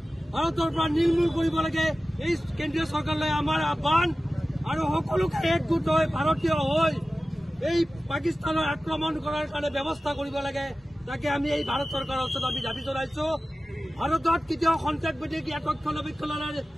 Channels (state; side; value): normal; both; correlation 0.96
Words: ভাৰতৰ পৰা নিৰ্মূল কৰিব লাগে এই কেন্দ্ৰীয় চৰকাৰলৈ আমাৰ আহ্বান আৰু সকলোকে একগোট হৈ ভাৰতীয় হৈ এই পাকিস্তানৰ আক্ৰমণ কৰাৰ কাৰণে ব্যৱস্থা কৰিব লাগে। তাকে আমি এই ভাৰত চৰকাৰৰ ওচৰত আমি দাবী জনাইছো। ভাৰতত কেতিয়াও সন্ত্ৰাসবাদীক ইয়াত ৰক্ষণাবেক্ষণৰ